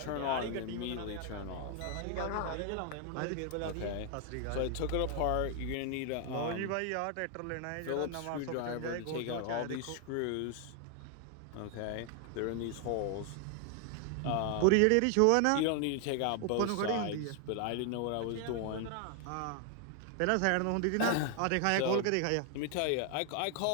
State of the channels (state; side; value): different; both; correlation 0.00